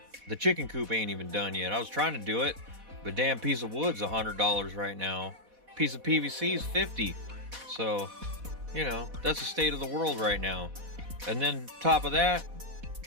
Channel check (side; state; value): left; late; 4.1 ms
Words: The chicken coop ain't even done yet. I was trying to do it, but damn piece of wood's $100 right now. Piece of PVC is $50. So, you know, that's the state of the world right now. And then top of that,